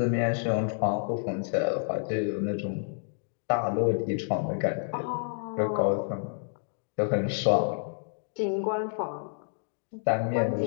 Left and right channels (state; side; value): silent; right; digital silence